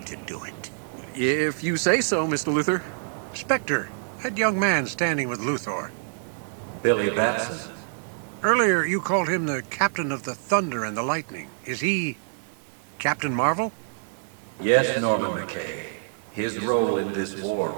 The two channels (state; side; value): silent; left; 59 dB below the other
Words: to do it. If you say so, Mr. Luthor. Spectre, that young man standing with Luthor. Billy Batson. Earlier, you called him the Captain of the Thunder and the Lightning. Is he Captain Marvel? Yes, Norman McKay. His role in this war